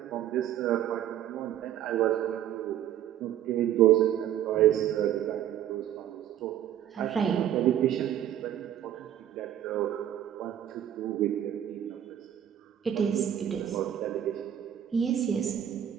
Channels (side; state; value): left; quieter; 10.8 dB